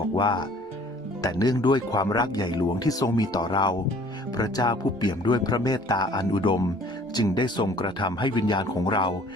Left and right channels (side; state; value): both; normal; correlation 0.54